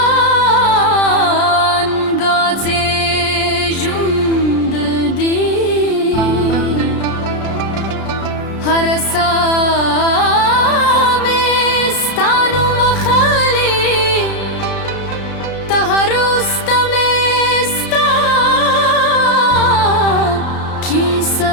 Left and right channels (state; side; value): late; right; 33 ms